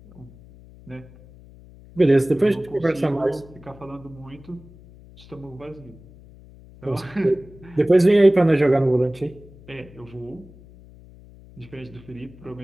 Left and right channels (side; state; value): left; noise; hum, 22 dB below the sound